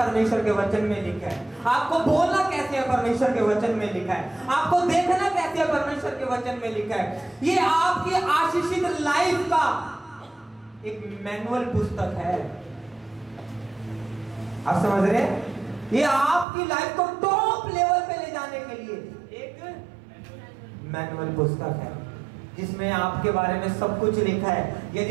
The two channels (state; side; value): drops out; left; at 16.4 s